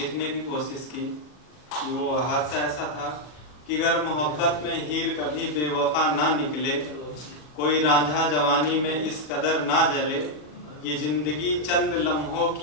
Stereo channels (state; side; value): late; right; 40 ms